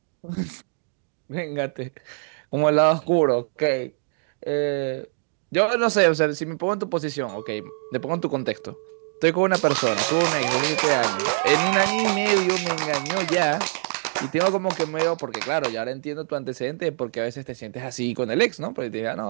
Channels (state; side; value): silent; left; 59 dB below the other